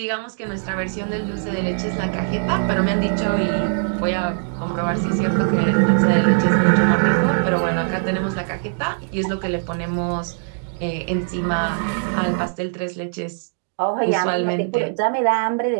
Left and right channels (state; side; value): silent; left; digital silence